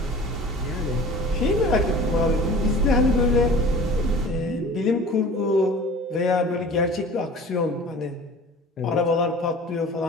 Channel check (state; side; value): normal; both; correlation 0.42